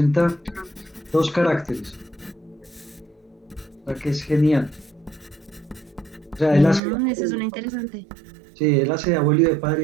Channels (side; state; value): left; drops out; at 6.8 s